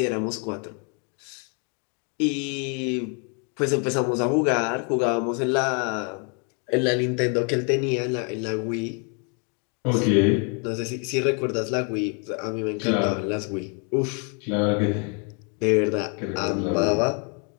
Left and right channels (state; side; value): quieter; right; 37.6 dB